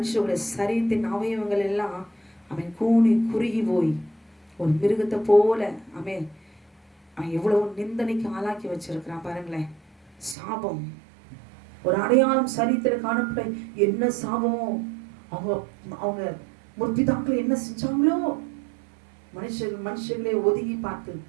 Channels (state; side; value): drops out; left; at 10.4 s